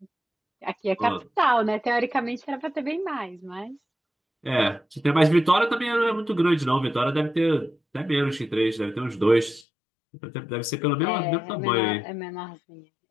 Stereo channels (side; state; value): right; drops out; at 9.7 s